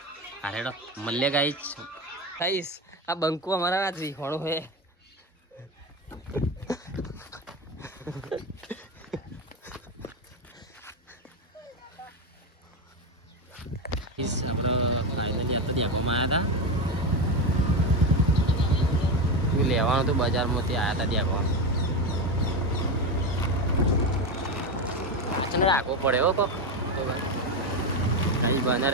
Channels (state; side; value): normal; both; correlation 0.15